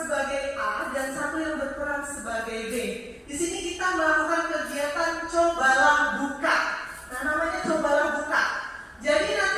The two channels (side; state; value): both; identical; correlation 1.00